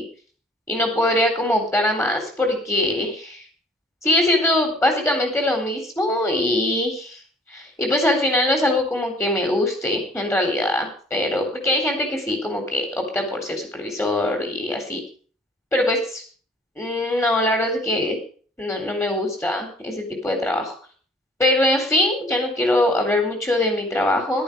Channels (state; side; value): normal; both; correlation 0.55